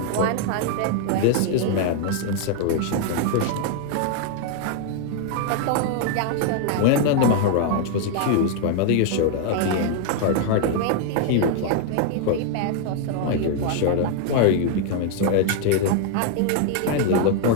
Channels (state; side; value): different; both; correlation 0.00